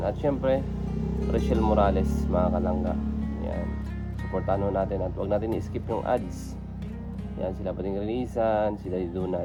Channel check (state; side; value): identical; both; correlation 1.00